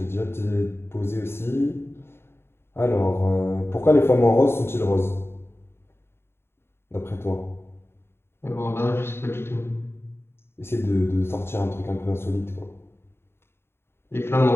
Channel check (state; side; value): late; right; 0.12 ms